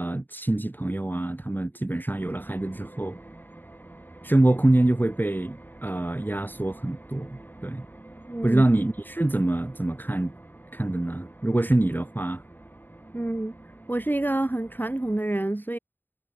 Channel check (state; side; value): late; right; 0.092 ms